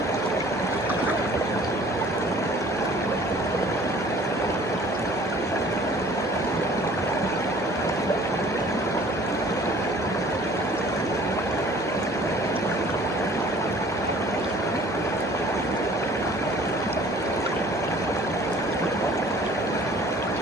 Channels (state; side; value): normal; both; correlation 0.51